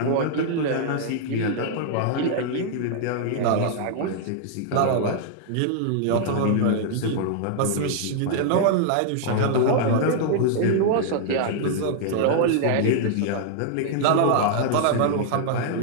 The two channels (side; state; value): both; different; correlation -0.01